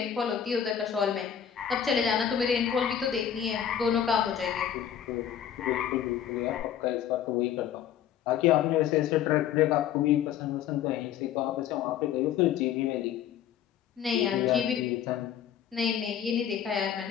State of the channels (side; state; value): right; quieter; 9.5 dB